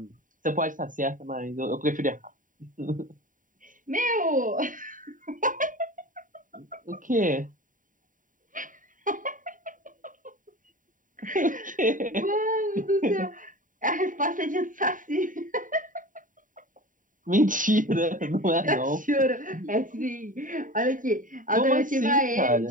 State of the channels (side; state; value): left; late; 0.39 ms